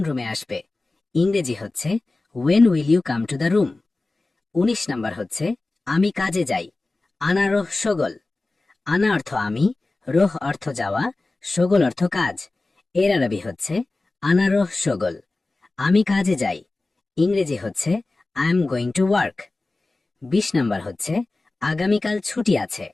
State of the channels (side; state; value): right; quieter; 3.2 dB